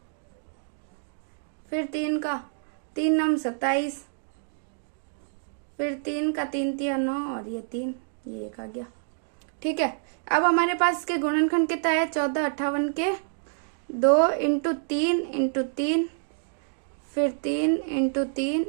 फिर 3 का 3 9 27, फिर 3 का 3 तिया 9, और ये 3, ये 1 आ गया। ठीक है, अब हमारे पास के गुणनखंड कितना है, 1458 के 2 इंटू 3 इंटू 3, फिर 3 इंटू 3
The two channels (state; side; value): silent; left; digital silence